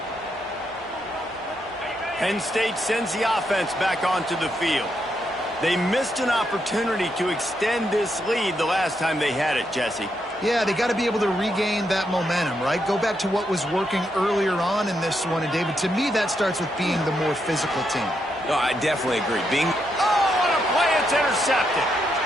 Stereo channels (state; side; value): normal; both; correlation 0.80